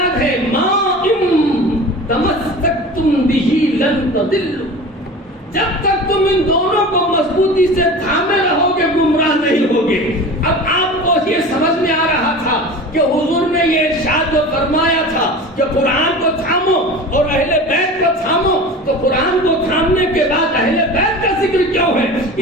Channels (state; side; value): normal; both; correlation 0.35